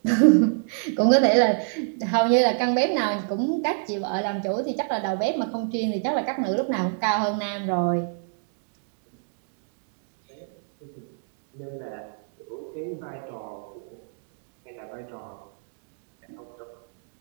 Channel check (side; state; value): left; silent; digital silence